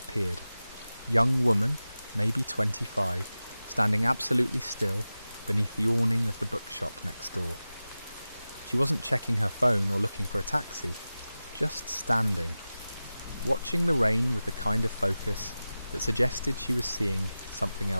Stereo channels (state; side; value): inverted; both; correlation -0.96